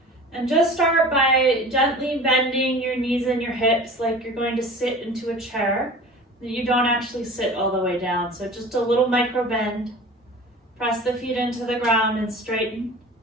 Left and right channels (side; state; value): both; normal; correlation 0.39